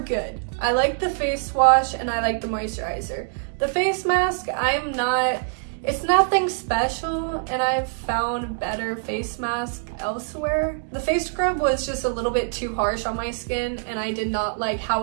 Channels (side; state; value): left; silent; digital silence